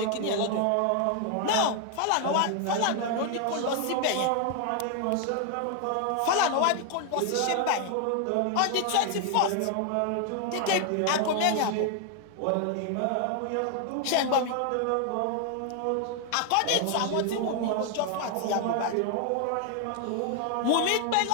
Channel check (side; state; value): both; different; correlation 0.00